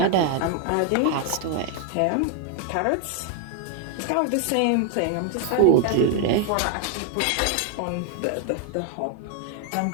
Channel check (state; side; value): different; both; correlation 0.00